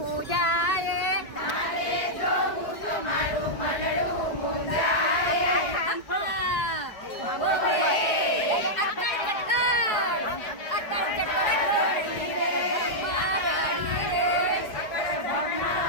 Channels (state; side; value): late; right; 4.9 ms